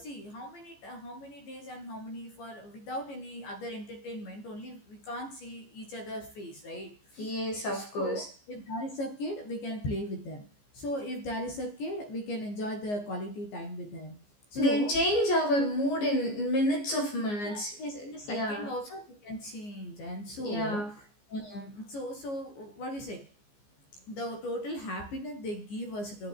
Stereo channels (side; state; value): right; late; 14 ms